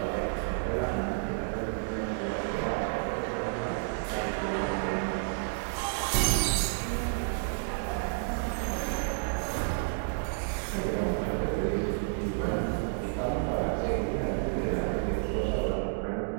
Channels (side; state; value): left; silent; digital silence